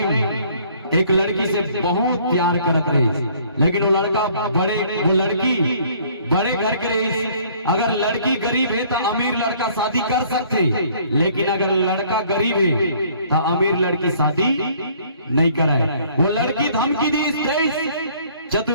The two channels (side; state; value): both; inverted; correlation -0.58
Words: एक लड़की से बहुत प्यार करत रही, लेकिन वो लड़का वो लड़की बड़े घर के रही। अगर लड़की गरीब है तो अमीर लड़का शादी कर सकते, लेकिन अगर लड़का गरीब है तो अमीर लड़की शादी नहीं कराए। वो लड़की धमकी दी,